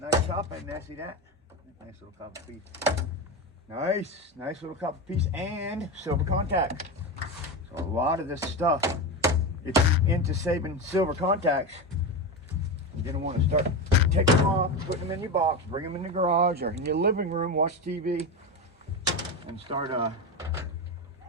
nice copper in there. See that? Nice little copper piece. Nice little copper piece and silver contact. So a lot of this stuff, if you're into saving silver contacts, you're gonna want to start taking them off, putting them in your box, bring them in the garage or in your living room, watch TV, and start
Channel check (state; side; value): normal; both; correlation 0.18